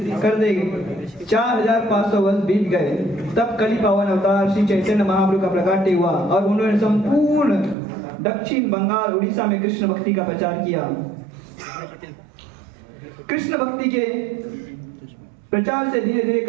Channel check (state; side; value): drops out; left; at 7.8 s